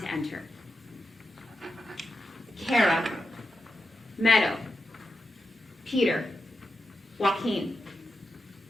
enter. Kara, Meadow, Peter, Joaquin,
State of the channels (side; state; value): both; normal; correlation 0.89